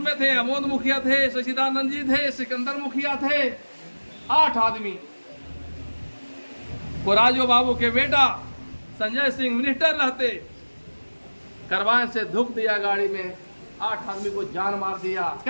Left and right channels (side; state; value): both; inverted; correlation -1.00